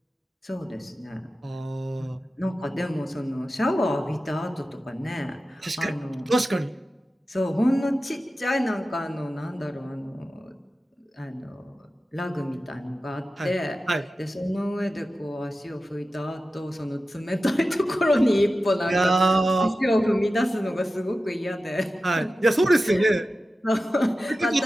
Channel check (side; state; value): both; normal; correlation 0.94